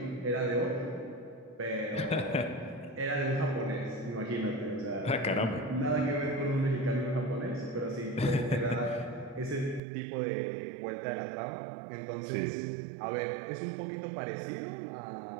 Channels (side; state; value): left; drops out; at 9.8 s